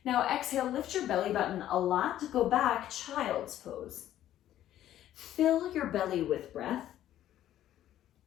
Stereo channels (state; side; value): quieter; right; 12.3 dB